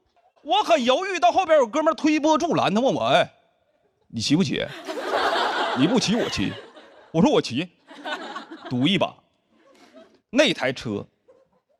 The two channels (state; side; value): identical; both; correlation 1.00